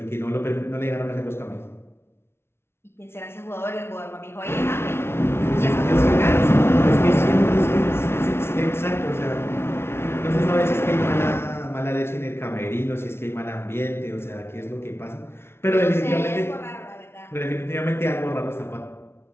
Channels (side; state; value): right; late; 0.12 ms